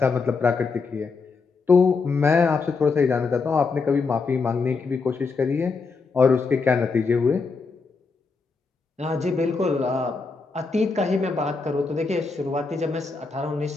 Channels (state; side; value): quieter; right; 4.5 dB